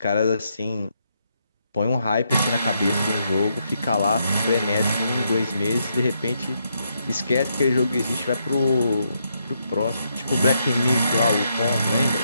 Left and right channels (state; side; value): inverted; both; correlation -0.78